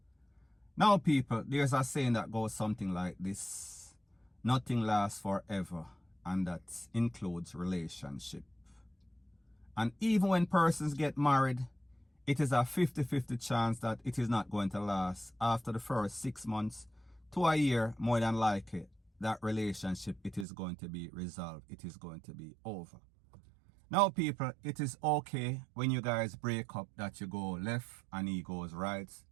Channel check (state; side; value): drops out; left; at 20.5 s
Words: Now, people, there's a saying that goes something like this: nothing lasts forever, and that includes relationship. And even when persons get married, it is a 50-50 chance that it is not going to last. After the first 6 months to a year, more than likely, that relationship, it is going to be resolved. It is going to be over. Now, people, it is okay when you guys break up that you go left and he goes right,